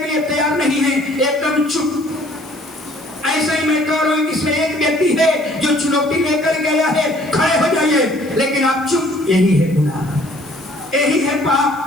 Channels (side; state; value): left; noise; hiss, 24 dB below the sound